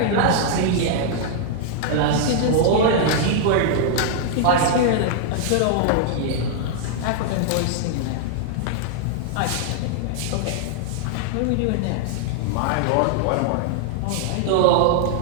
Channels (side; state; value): both; different; correlation -0.01